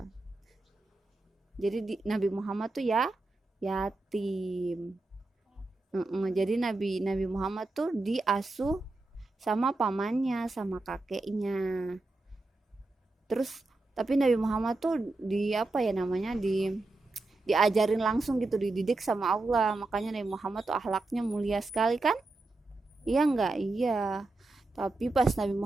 Jadi Nabi Muhammad tuh yatim. Jadi Nabi Muhammad tuh diasuh sama pamannya, sama kakeknya. Terus tapi Nabi Muhammad tuh diajarin langsung gitu, dididik sama Allah. Makanya Nabi Muhammad tuh akhlaknya mulia sekali kan? Iya enggak? Iya. Tapi pas Nabi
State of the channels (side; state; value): left; quieter; 3.1 dB